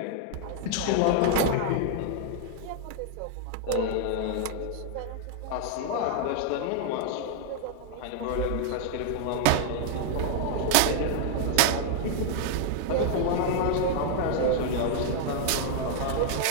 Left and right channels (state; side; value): different; both; correlation 0.00